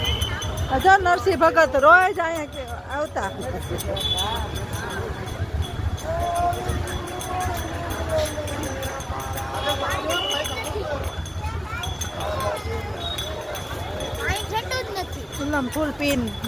અચ્છા નરસિંહ ભગત રોજ અહીંયા કે આવતા. ફૂલમ ફૂલ પીન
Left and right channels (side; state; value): both; identical; correlation 1.00